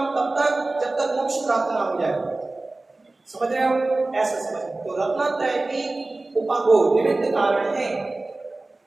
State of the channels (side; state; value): left; quieter; 3.1 dB